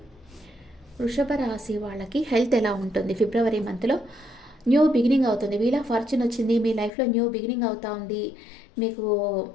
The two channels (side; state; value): right; drops out; at 6.9 s